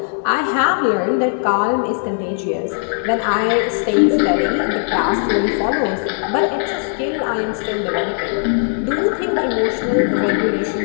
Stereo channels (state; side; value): silent; right; digital silence